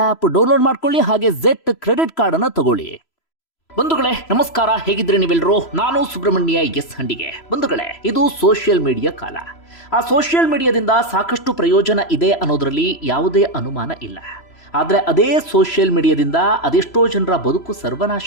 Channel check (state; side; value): late; right; 3.0 ms